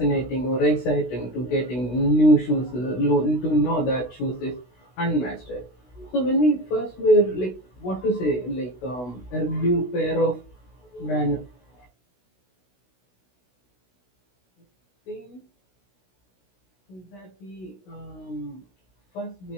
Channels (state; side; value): late; right; 16 ms